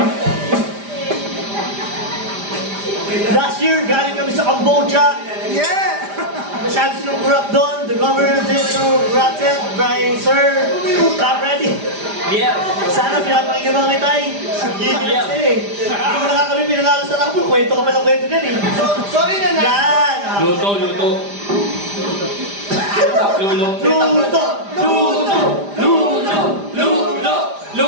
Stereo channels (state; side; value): late; left; 5.0 ms